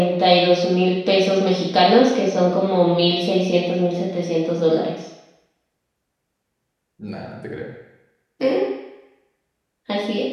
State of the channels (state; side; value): identical; both; correlation 1.00